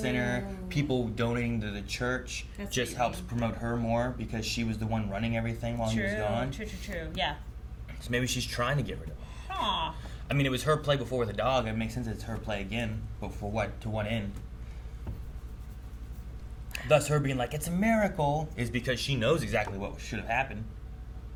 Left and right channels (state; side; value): identical; both; correlation 1.00